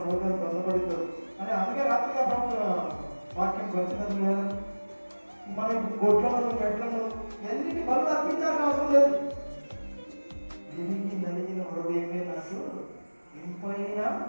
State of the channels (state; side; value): inverted; both; correlation -1.00